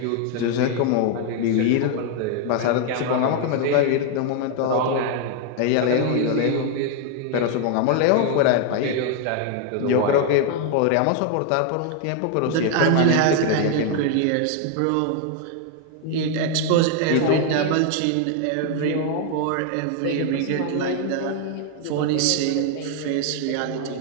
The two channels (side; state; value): both; different; correlation 0.00